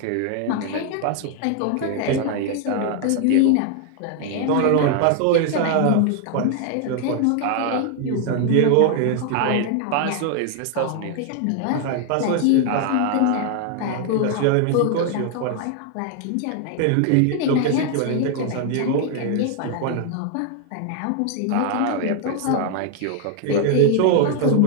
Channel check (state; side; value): different; both; correlation 0.00